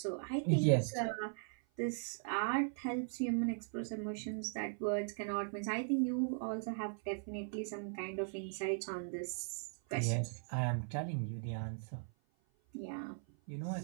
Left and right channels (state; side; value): silent; left; 52 dB below the other